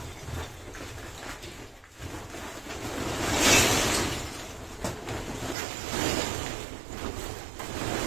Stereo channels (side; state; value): left; drops out; at 5.6 s